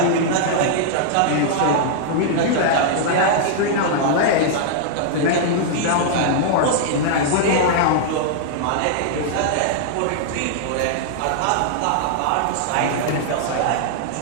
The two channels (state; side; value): different; both; correlation -0.01